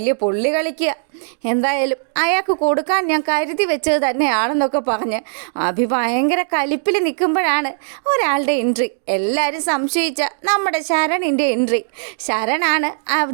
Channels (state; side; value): silent; left; digital silence